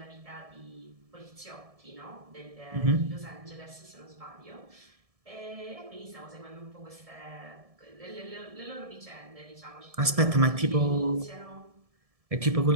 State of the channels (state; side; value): late; left; 1.7 ms